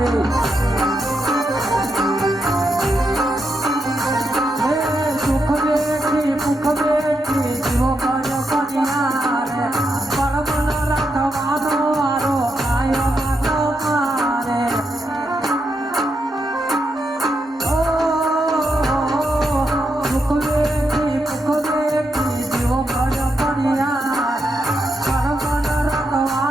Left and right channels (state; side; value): normal; both; correlation 0.83